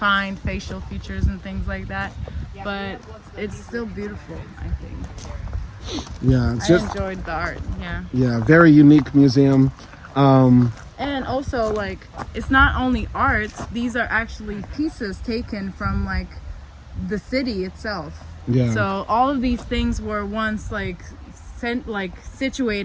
facial features and things like that, but it's still beautiful, I think. Yeah, I enjoyed the art. Yeah, very unique museum. And also, like, it's not only art, these are actually pieces taken from, like, the city itself. Yeah. So all of these things were once,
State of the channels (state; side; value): identical; both; correlation 1.00